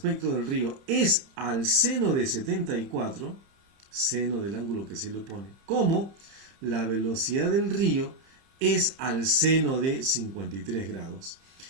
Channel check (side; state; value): left; late; 30 ms